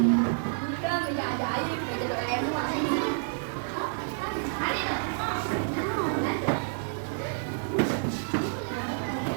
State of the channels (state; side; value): silent; left; digital silence